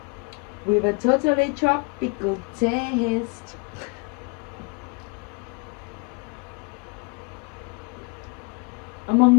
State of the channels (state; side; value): quieter; right; 31.5 dB